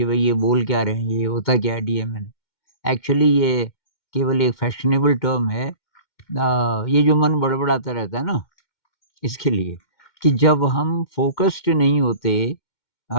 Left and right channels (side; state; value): right; late; 2.1 ms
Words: भई ये बोल क्या रहे हैं, ये होता क्या है डीएमएन। एक्चुअली ये केवल एक फैशनेबल टर्म है। ये जो मन बड़बड़ाता रहता है ना, इसके लिए कि जब हम फ़ोकस्ड नहीं होते